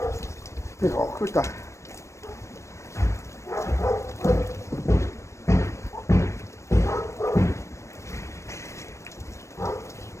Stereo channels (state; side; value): late; right; 0.14 ms